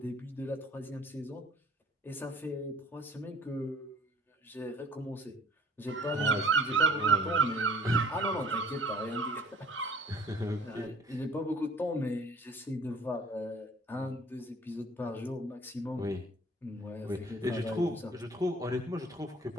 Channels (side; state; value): both; normal; correlation 0.52